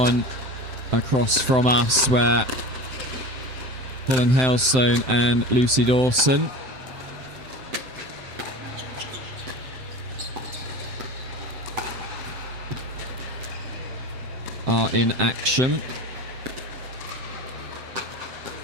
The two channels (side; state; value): left; late; 7.7 ms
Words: across from us, where Colin Hailstone and Lucy Dawson are in action.